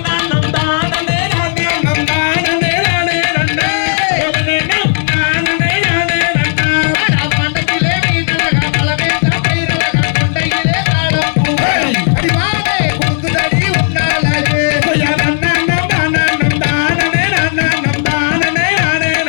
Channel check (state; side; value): silent; right; digital silence